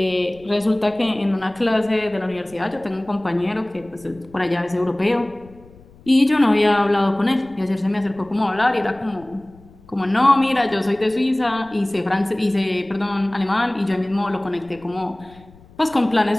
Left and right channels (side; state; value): left; noise; rumble, 25 dB below the sound